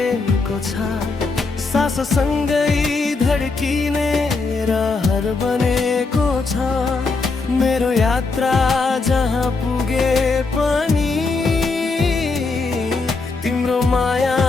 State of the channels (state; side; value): quieter; right; 4.0 dB